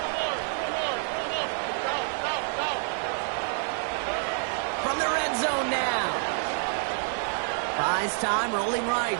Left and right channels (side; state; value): left; silent; 58 dB below the other